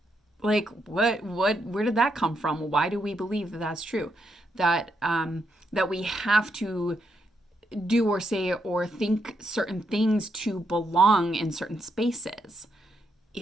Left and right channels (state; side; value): normal; both; correlation 0.80